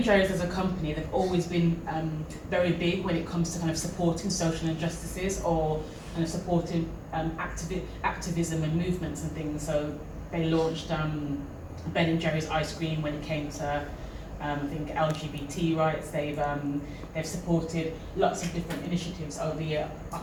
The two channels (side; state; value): both; identical; correlation 1.00